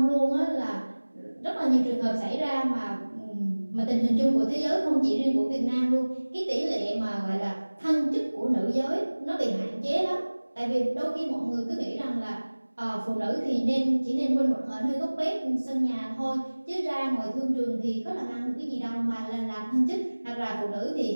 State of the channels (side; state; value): both; inverted; correlation -1.00